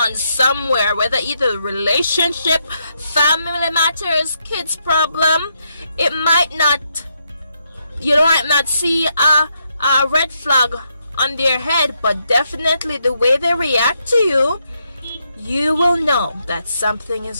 somewhere, whether either relationship, family matters, kids problem. It might not, you might not see a red flag on their head, but definitely the way they react to you, you will know that something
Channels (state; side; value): inverted; both; correlation -0.79